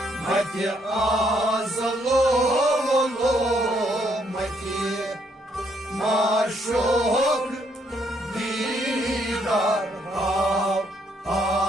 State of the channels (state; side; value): normal; both; correlation 0.71